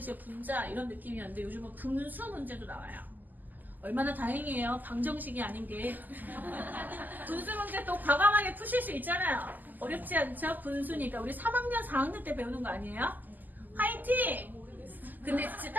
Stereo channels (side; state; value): left; late; 0.085 ms